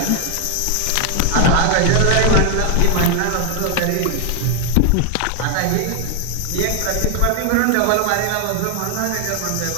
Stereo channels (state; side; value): different; both; correlation 0.00